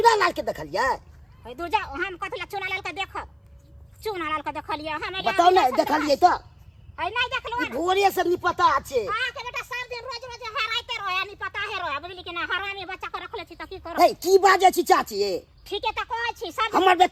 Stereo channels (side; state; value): both; identical; correlation 1.00